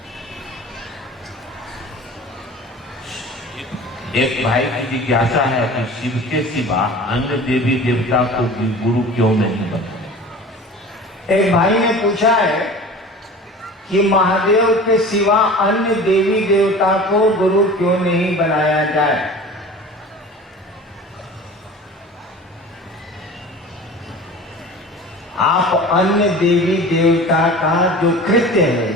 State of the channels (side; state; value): both; normal; correlation 0.39